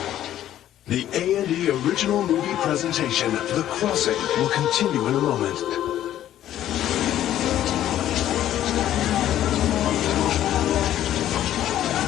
The A&E original movie presentation, The Crossing, will continue in a moment.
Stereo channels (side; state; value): right; quieter; 12.1 dB